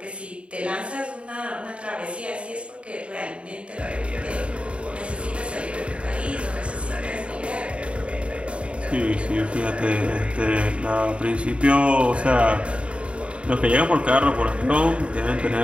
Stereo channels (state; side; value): late; left; 0.060 ms